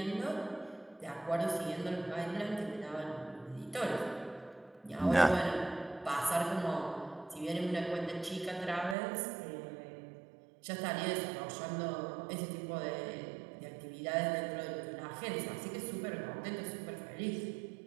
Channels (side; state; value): left; drops out; at 9.0 s